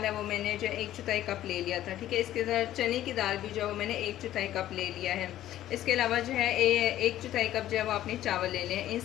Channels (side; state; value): right; quieter; 13.1 dB